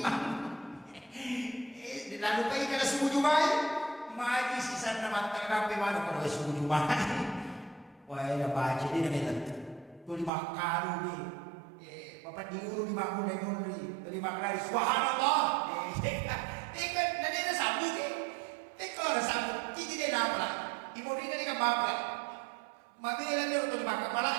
Lalu kaya kada subuh jumai magi sisa nama terapi mana kalau subuh jumai. Wah ya baca dia namanya tu 5 kali ni. Bapak diuru 5 kali mundri 5 kali subhanallah. Ikan nanti ada sambung ke? Kalau ada sambung, kita tidak dapat. Ibu ini ni kan bapak. Mami ni dia untuk 5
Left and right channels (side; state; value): left; drops out; at 10.3 s